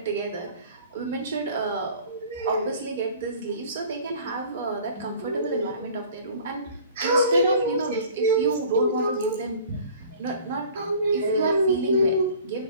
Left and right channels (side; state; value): both; inverted; correlation -0.47